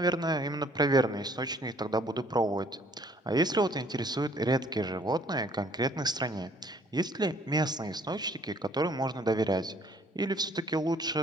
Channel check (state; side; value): normal; both; correlation 0.60